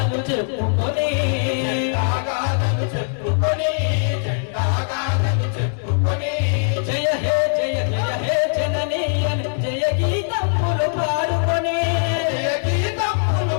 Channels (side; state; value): right; silent; 65 dB below the other